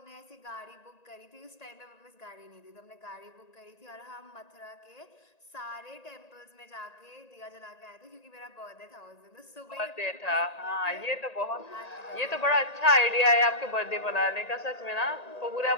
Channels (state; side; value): late; right; 1.9 ms